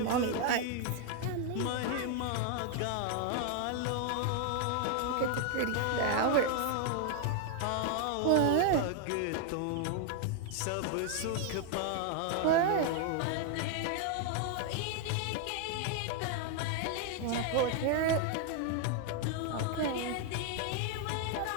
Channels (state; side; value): different; both; correlation 0.00